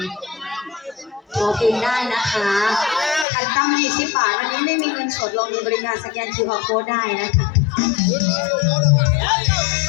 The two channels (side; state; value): right; drops out; at 3.2 s